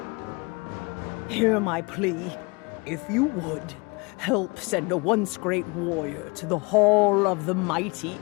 Hear my plea. If you would, help send a once-great warrior to the Hall of the Mighty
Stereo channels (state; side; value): quieter; right; 28.1 dB